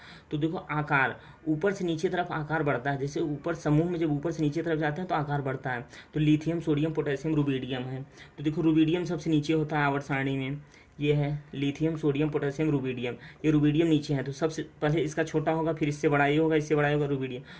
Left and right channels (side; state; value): both; identical; correlation 1.00